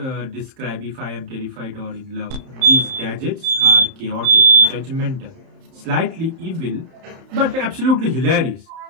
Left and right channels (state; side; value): late; left; 31 ms